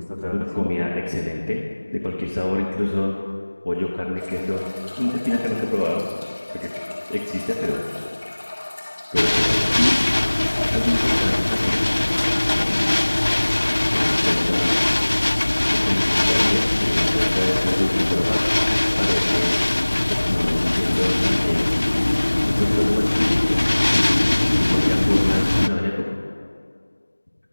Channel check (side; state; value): both; inverted; correlation -1.00